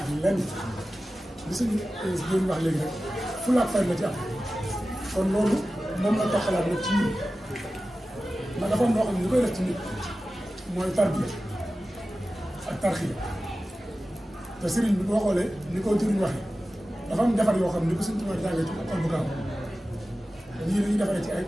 lenn li suñu doon wax léegi rek fulla ak fay la ci am kon loolu moom la toxalaat rek ci ñun ndax dafa am loo xam ne ñu koy def ci nit mooy tarbiya ak tarxiya te sëriñ bi boo xoolee ni ko jëriñ waxee dafa am defar yoo xam ne ko Sëriñ Tuubaa jàngee ci école bu gaaw ñii dañuy defaree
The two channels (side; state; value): both; normal; correlation 0.95